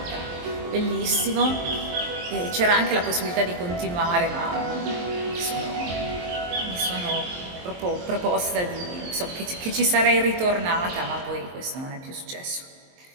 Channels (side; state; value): left; late; 23 ms